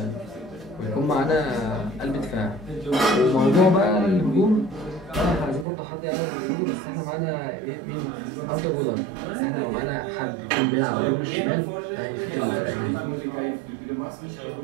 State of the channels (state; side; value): drops out; left; at 5.7 s